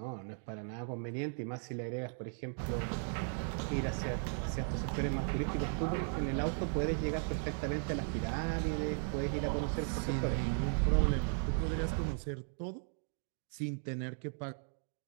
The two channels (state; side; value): silent; left; 53 dB below the other